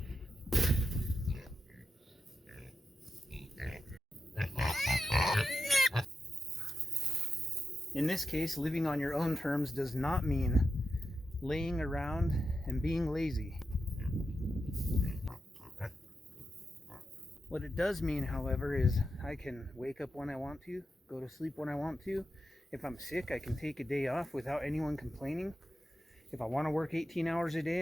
In this case, living on your own terms does not mean laying around and being lazy. What it does mean, however, is I can wake up when I want to, go to sleep when I want to. If I'm sick, I can take a day off without anyone complaining. If I want to work 18 hours a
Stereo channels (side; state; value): both; normal; correlation 0.89